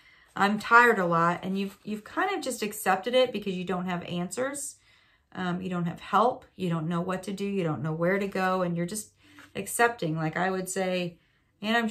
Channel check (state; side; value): identical; both; correlation 1.00